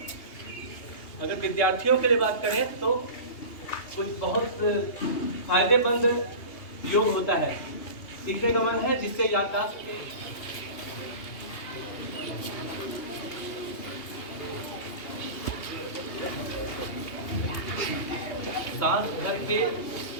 अगर विद्यार्थियों के लिए बात करें तो कुछ बहुत फायदेमंद योग होता है। सीखने का मन है, जिससे याददाश्त सांस भर के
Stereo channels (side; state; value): right; late; 2.8 ms